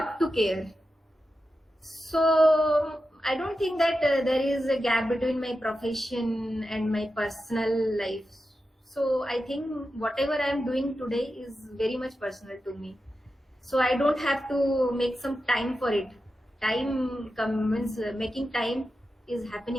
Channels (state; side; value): normal; both; correlation 0.91